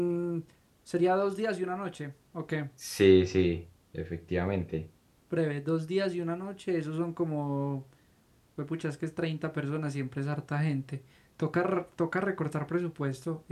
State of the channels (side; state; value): both; identical; correlation 1.00